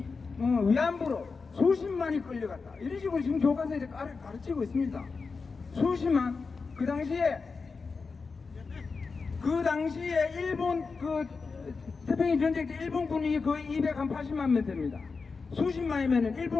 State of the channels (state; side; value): quieter; right; 4.6 dB